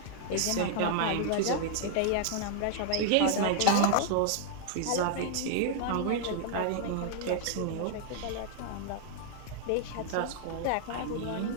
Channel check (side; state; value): both; different; correlation 0.00